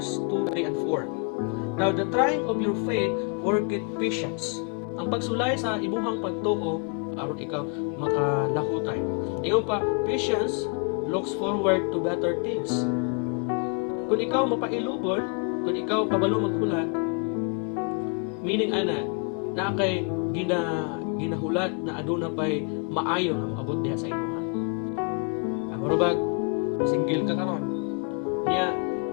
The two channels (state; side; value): quieter; right; 37.4 dB